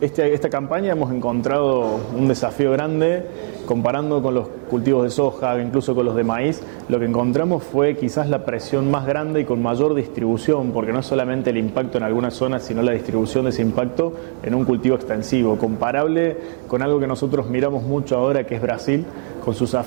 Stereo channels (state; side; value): silent; left; digital silence